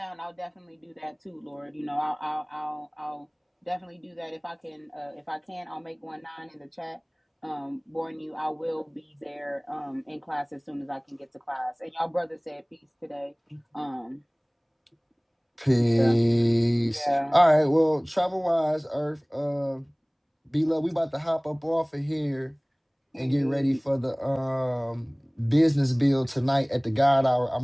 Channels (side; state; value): both; identical; correlation 1.00